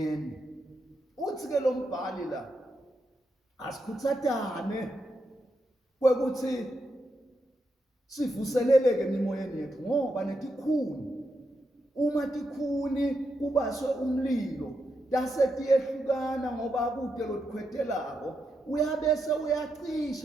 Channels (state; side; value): normal; both; correlation 0.84